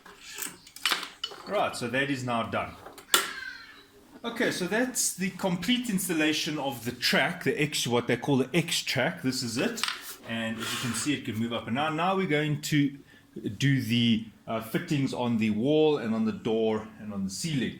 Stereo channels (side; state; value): both; identical; correlation 1.00